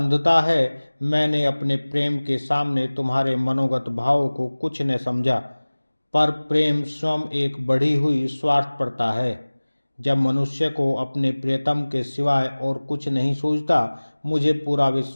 है। मैंने अपने प्रेम के सामने तुम्हारे मनोगत भावों को कुछ न समझा, पर प्रेम स्वयं एक बढ़ी हुई स्वार्थपरता है। जब मनुष्य को अपने प्रियतम के सिवाय और कुछ नहीं सूझता, मुझे पूरा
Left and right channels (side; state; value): both; inverted; correlation -1.00